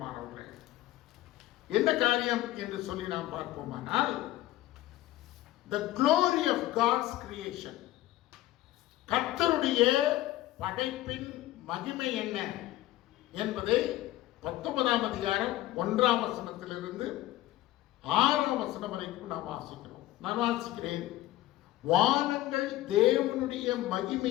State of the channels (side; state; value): right; quieter; 15.5 dB